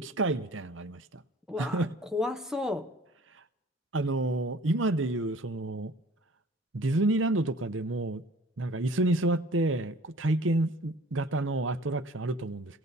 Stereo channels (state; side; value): normal; both; correlation 0.49